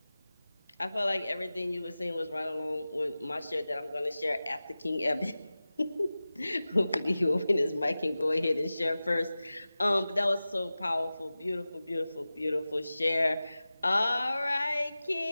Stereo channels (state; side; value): inverted; both; correlation -0.96